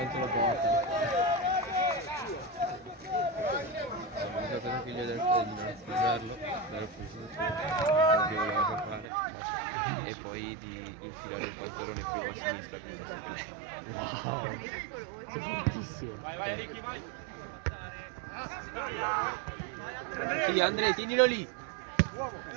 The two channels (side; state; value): left; drops out; at 9.1 s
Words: la porta. Ho usato la figlia del fratello a sposarlo, dare che voleva fare e poi di infilare il pantalone più a sinistra con la Sei fortissimo. Sì, Andrea, tienilo lì.